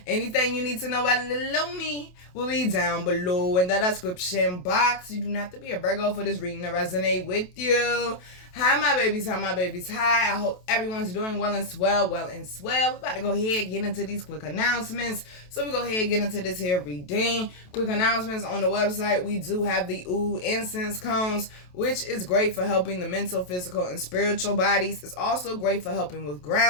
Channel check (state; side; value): late; right; 27 ms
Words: Anything you need to know about little me will be down below in the description box. You do not have to be a Virgo for this reading to resonate with you. Hi, my babies. Hi, my babies. Hi. I hope everyone's doing well and swell. We're about to go ahead and get into these quick announcements. So we go ahead and get into this here reading. Quick announcements on the website. We do have the Oud incense cones, which is great for helping the mental, physical, and spiritual bodies. It's also great for helping with